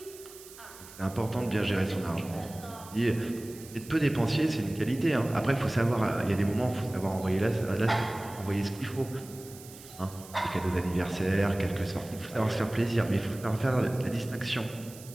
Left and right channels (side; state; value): right; noise; hiss, 18 dB below the sound